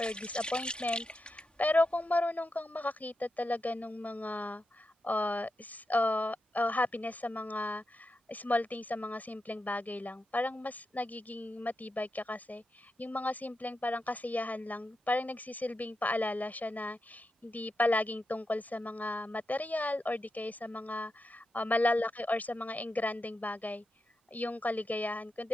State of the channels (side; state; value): both; normal; correlation 0.88